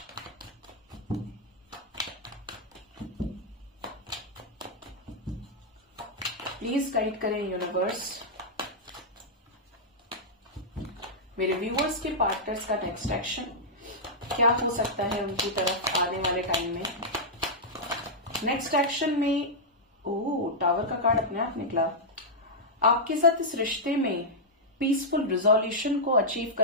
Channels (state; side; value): normal; both; correlation -0.08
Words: प्लीज गाइड करें यूनिवर्स मेरे व्यूअर्स के पार्टनर्स का नेक्स्ट एक्शन क्या हो सकता है उनकी तरफ आने वाले टाइम में। नेक्स्ट एक्शन में टावर का कार्ड अपने आप निकला। आपके साथ इस रिश्ते में पीसफुल रिजोल्यूशन को अचीव